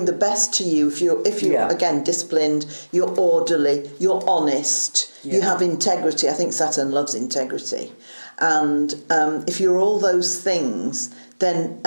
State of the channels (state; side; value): inverted; both; correlation -1.00